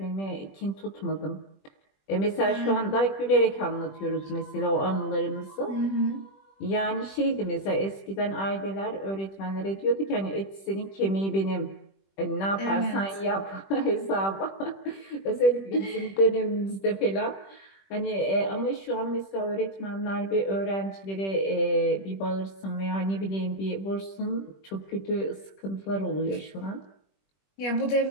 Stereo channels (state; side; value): late; right; 21 ms